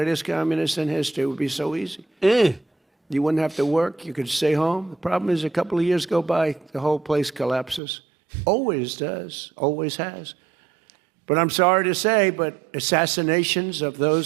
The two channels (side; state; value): left; drops out; at 7.8 s